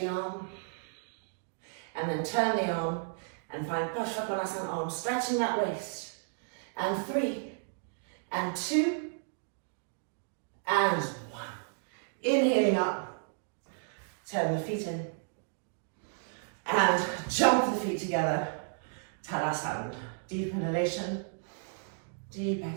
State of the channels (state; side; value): silent; left; digital silence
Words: arm. And then turn the arm and find Prasarita arm, stretching that waist. And 3, and 2, and 1. Inhaling up. Turn the feet in. And jump the feet together. Padasana. Deep inhalation, deep